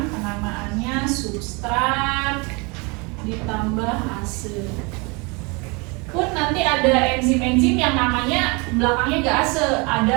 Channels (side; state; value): left; quieter; 29.2 dB